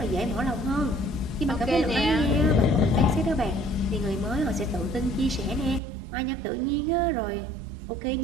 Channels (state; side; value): drops out; left; at 5.8 s